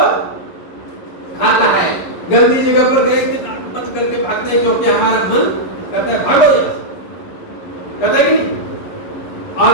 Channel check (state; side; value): late; right; 11 ms